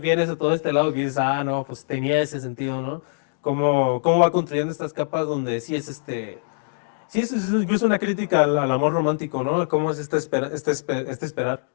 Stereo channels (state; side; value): silent; right; digital silence